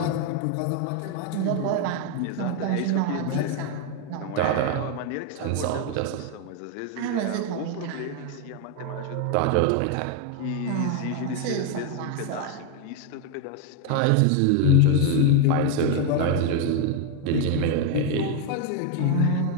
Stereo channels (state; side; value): different; both; correlation 0.01